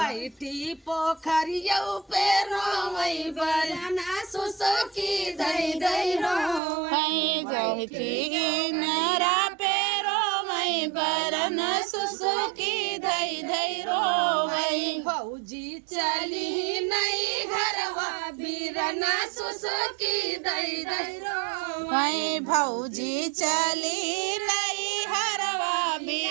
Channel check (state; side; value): drops out; left; at 6.6 s